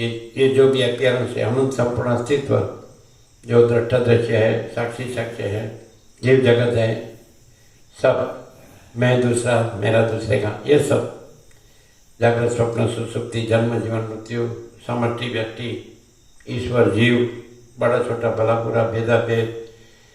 जो भी अपियरेंस है, अनंत संपूर्ण अस्तित्व जो दृष्टा दृश्य है, साक्षी साक्ष्य है, जीव जगत है, सब मैं दूसरा मेरा दूसरे का, ये सब जागृत स्वप्न सुसुप्ति जन्म जीवन मृत्यु समष्टि व्यक्ति ईश्वर जीव बड़ा छोटा भला बुरा भेदा भेद।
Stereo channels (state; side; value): identical; both; correlation 1.00